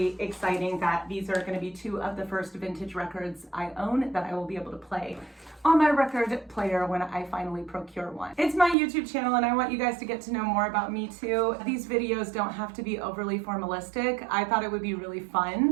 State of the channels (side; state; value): left; drops out; at 8.8 s